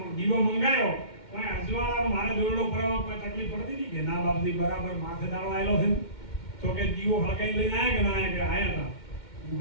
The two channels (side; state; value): right; late; 2.1 ms